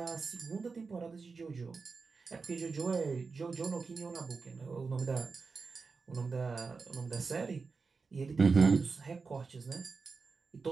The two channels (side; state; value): left; quieter; 4.6 dB